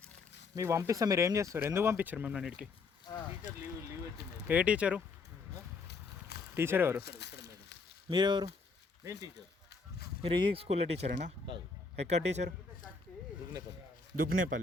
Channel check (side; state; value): right; quieter; 4.4 dB